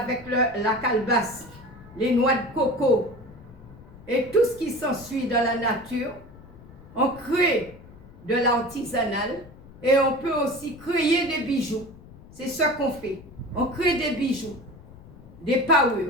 la calebasse, les noix de coco et tout ce qui s'ensuit dans la nature. On crée de l'artisanal Et on peut aussi créer des bijoux. C'est ce qu'on fait. On crée des bijoux, des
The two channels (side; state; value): left; noise; rumble, 20 dB below the sound